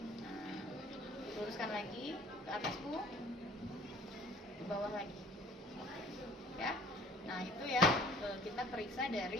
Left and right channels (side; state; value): both; normal; correlation 0.51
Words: Nah, luruskan lagi ke atas, Bu. Ke bawah lagi. Ya. Nah, itu ya kita periksa